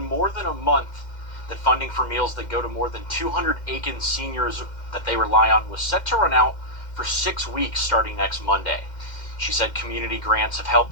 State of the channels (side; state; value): right; late; 2.1 ms